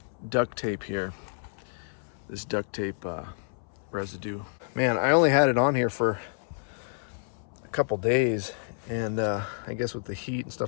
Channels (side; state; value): right; silent; 59 dB below the other